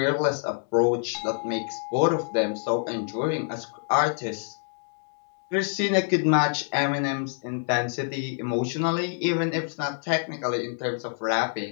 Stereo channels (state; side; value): silent; right; 56 dB below the other